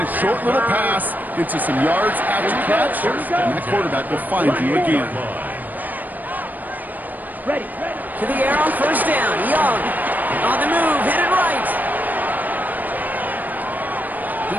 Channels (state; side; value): late; left; 0.084 ms